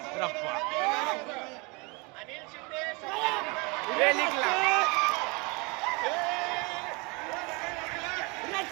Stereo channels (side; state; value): left; quieter; 28.7 dB